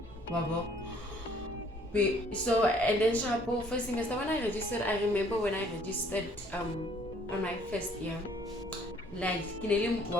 So, and then Shabu, first semester when I registered, I remember when I registered on my first year, like kinele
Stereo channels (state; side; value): normal; both; correlation 0.60